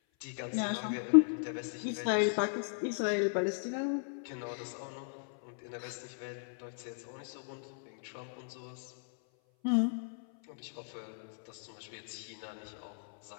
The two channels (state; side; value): silent; right; 54 dB below the other